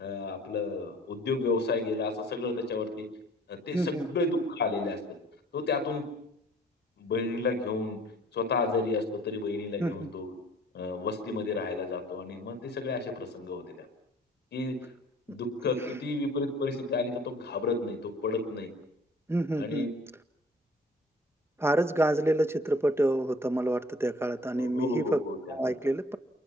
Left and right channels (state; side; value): normal; both; correlation 0.54